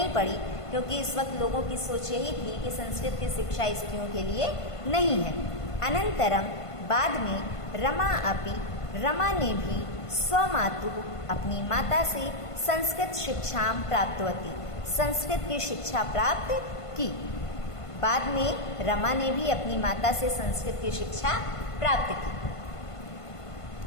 पड़ी, क्योंकि इस वक्त लोगों की सोच यही थी कि संस्कृत की शिक्षा स्त्रियों के लिए नहीं है। अनंतरम, बाद में रमा ने भी स्वमातु, अपनी माता से संस्कृत शिक्षां प्राप्तवती, संस्कृत की शिक्षा प्राप्त की। बाद में रमा ने भी अपनी माता से संस्कृत की शिक्षा प्राप्त की।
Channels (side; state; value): right; late; 1.5 ms